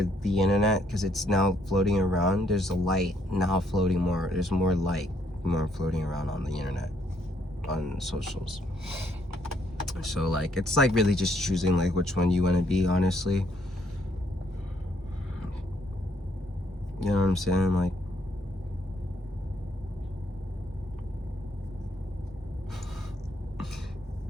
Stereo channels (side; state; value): both; normal; correlation 0.70